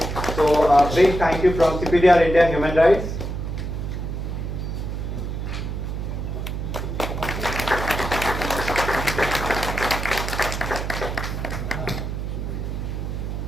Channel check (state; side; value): noise; right; hum, 4 dB below the sound